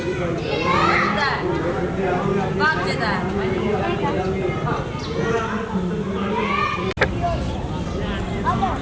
बात देता है।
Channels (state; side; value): identical; both; correlation 1.00